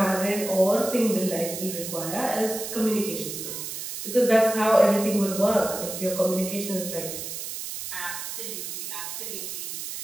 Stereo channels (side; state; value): right; noise; hiss, 7 dB below the sound